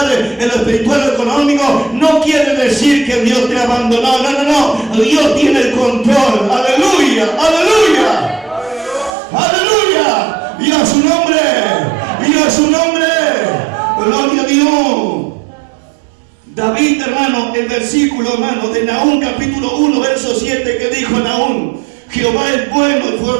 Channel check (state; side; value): drops out; left; at 9.2 s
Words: en lo espiritual, en lo económico. No quiere decir que Dios te abandonó. No. Dios tiene el control. Aleluya, aleluya, aleluya. Y a su nombre, y a su nombre. Gloria a Dios. David, hermano, el versículo, hermano, de Nahum, capítulo 1, verso 7, que dijo Nahum: Jehová es bueno y